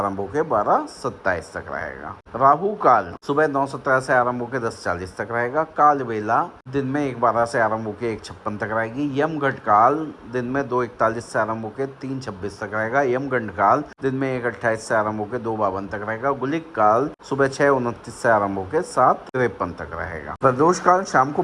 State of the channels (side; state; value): both; identical; correlation 1.00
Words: होकर 12:27 तक रहेगा। राहु काल सुबह 9:17 से आरंभ होकर 10:40 तक रहेगा। काल बेला दिन में 1:12 से आरंभ होकर 1:56 तक रहेगी। यमघट काल दिन में 2:41 से आरंभ होकर 3:26 तक रहेगा। यमगंड काल दिन में 1:28 से आरंभ होकर 2:52 तक रहेगा। गुलिक काल सुबह 6:29 से आरंभ होकर 7:53 तक रहेगा। प्रदोष काल शाम को